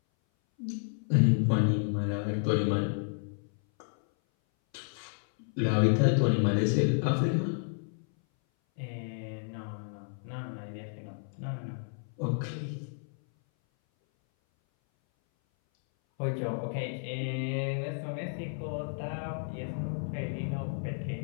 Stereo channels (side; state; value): right; silent; 57 dB below the other